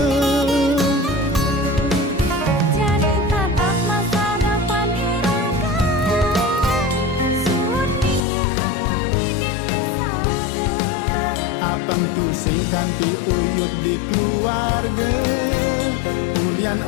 Jadi tatap masa depan diraga suut ninga harmoni dipisahkan. Apang tu sing kanti uyut di keluarga kulian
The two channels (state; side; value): drops out; right; at 8.2 s